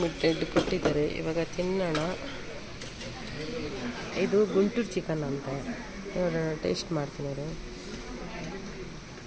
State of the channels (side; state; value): both; identical; correlation 1.00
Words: ಕೊಟ್ಟಿದ್ದಾರೆ. ಇವಾಗ ತಿನ್ನೋಣ. ಇದು ಗುಂಟೂರು ಚಿಕನ್ ಅಂತ. ನೋಡೋಣ, ಟೇಸ್ಟ್ ಮಾಡ್ತೀನಿ. ಅವರು